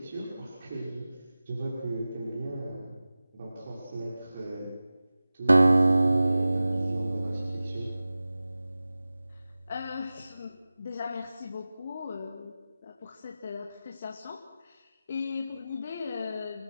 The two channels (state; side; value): inverted; both; correlation -0.96